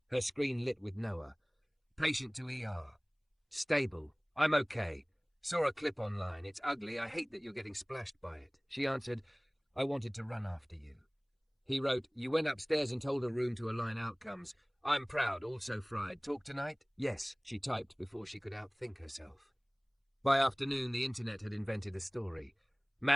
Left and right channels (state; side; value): identical; both; correlation 1.00